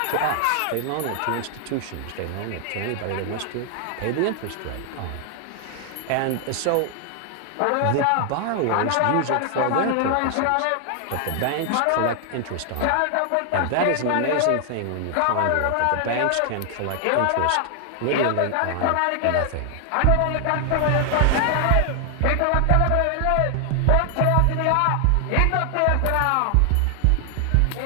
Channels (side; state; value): both; different; correlation 0.00